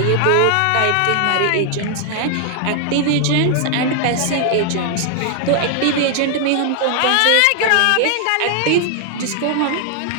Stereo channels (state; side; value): different; both; correlation 0.00